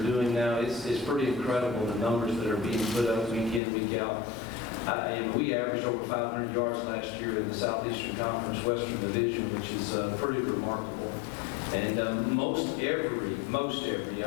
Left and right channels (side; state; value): right; drops out; at 3.6 s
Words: doing now. It's pretty incredible, the numbers that are being put up week in, week out. And we averaged over 500 yards last year in the Southeastern Conference Western Division, which is pretty remarkable. And most every,